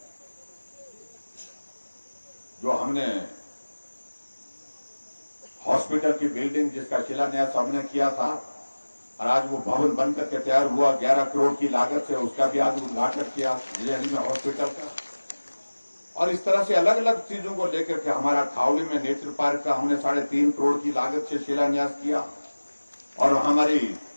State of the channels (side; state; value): both; inverted; correlation -1.00